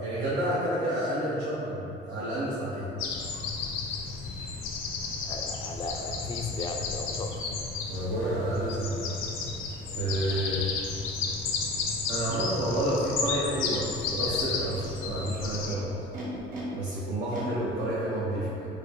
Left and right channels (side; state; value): both; normal; correlation 0.36